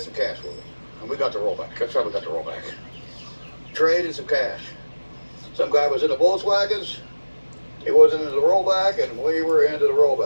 some cash with it. And we got the rollback. That's how we got the rollback. Traded some cash. Some guy was in the Volkswagens. He wasn't into the rollback, and we were into the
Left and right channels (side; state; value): both; inverted; correlation -1.00